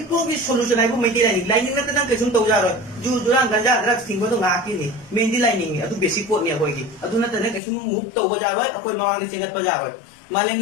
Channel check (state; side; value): drops out; right; at 7.6 s